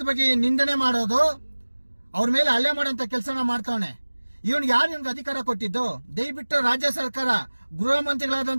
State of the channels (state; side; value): inverted; both; correlation -1.00